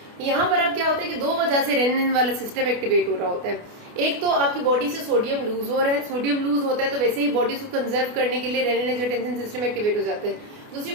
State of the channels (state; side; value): late; left; 28 ms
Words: यहाँ पर अब क्या होता है कि दो वजह से रेनिन वाला सिस्टम एक्टिवेट हो रहा होता है। एक तो आपकी बॉडी से सोडियम लूज हो रहा है, सोडियम लूज होता है तो वैसे ही बॉडी को कंजर्व करने के लिए रेनिन एंजियोटेंसिन सिस्टम एक्टिवेट हो जाते हैं। दूसरी